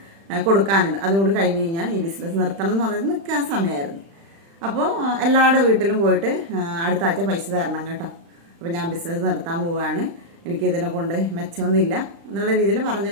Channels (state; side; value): late; left; 36 ms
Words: കൊടുക്കാനുണ്ട്. അതുകൂടി കഴിഞ്ഞ് കഴിഞ്ഞാൽ ഈ ബിസിനസ് നിർത്തണം എന്ന് പറഞ്ഞിട്ട് നിൽക്കാൻ സമയമായിരുന്നു. അപ്പോൾ എല്ലാവരുടെ വീട്ടിലും പോയിട്ട് അടുത്ത ആഴ്ച പൈസ തരണം കേട്ടോ, അപ്പോൾ ഞാൻ ബിസിനസ് നിർത്താൻ പോവുകയാണ്, എനിക്കിതിനെ കൊണ്ട് മെച്ചമൊന്നുമില്ല എന്നുള്ള രീതിയിൽ